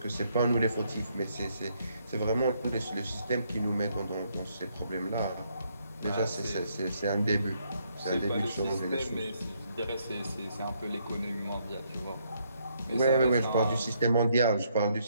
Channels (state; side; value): inverted; both; correlation -0.72